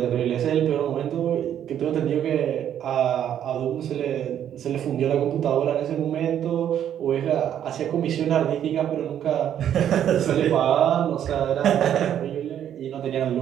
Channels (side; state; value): left; quieter; 10.0 dB